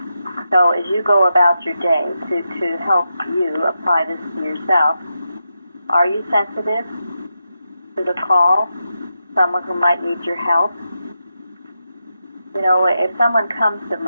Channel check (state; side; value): inverted; both; correlation -0.87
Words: So as you go about your day to help you apply this to yourself, are you sensitive to the call? Someone who might need your help? You know, if someone comes to